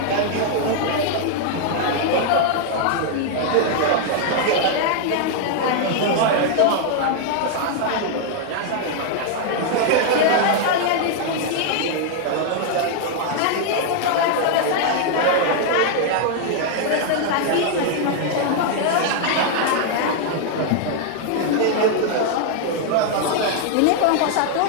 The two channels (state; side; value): different; both; correlation 0.00